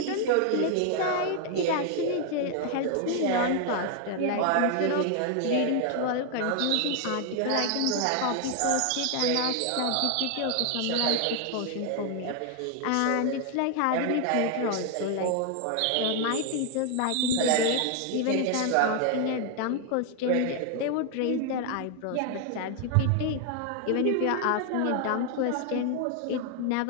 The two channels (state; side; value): different; both; correlation 0.00